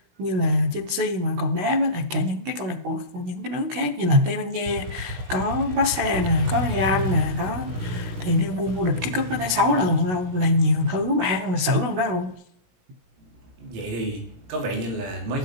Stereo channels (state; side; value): late; left; 16 ms